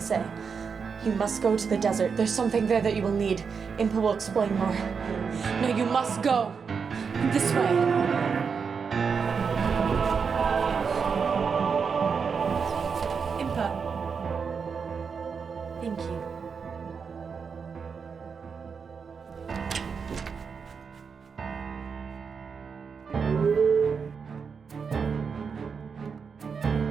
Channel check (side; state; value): left; quieter; 5.9 dB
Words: You must go to the desert. There's something there that you will need. Impa will explain more. No, you must go. This way. Impa. Thank you.